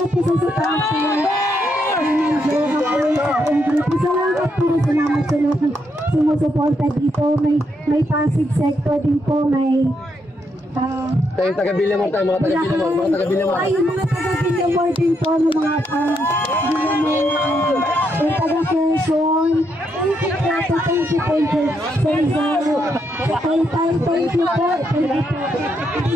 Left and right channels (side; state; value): both; normal; correlation 0.78